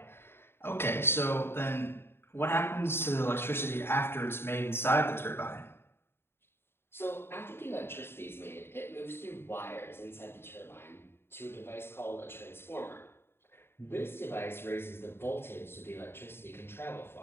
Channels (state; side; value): late; right; 0.11 ms